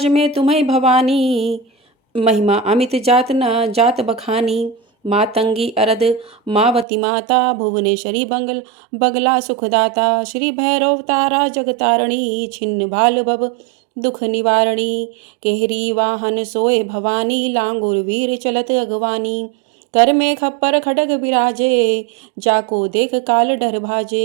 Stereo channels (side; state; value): left; drops out; at 6.9 s